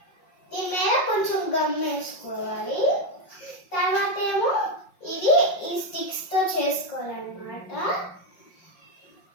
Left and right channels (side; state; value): right; late; 5.6 ms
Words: దీని మీద కొంచెం గమ్ వేసుకోవాలి. తర్వాత ఏమో ఇది ఈ స్టిక్స్తో చేసుకోవాలన్నమాట.